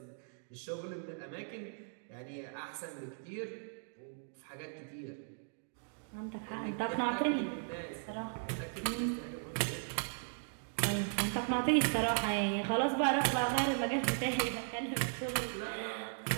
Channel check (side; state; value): left; silent; digital silence